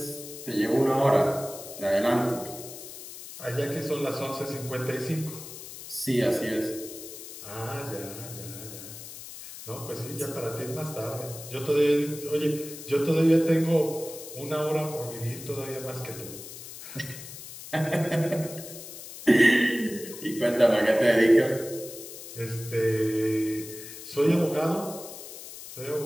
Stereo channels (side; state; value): left; noise; hiss, 13 dB below the sound